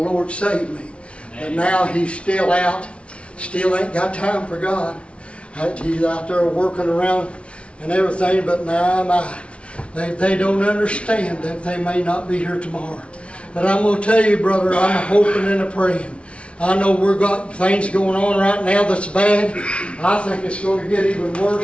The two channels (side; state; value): right; late; 0.060 ms